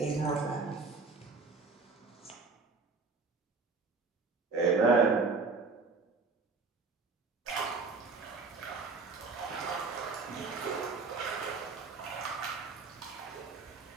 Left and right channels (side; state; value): left; quieter; 4.2 dB